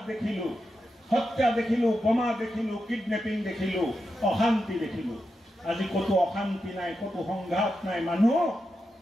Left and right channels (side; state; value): both; normal; correlation 0.88